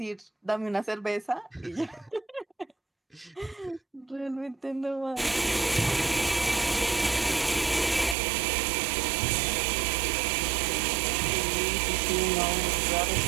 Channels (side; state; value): left; drops out; at 8.2 s